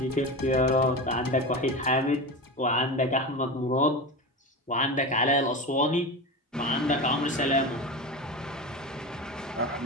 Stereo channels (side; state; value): both; normal; correlation 0.24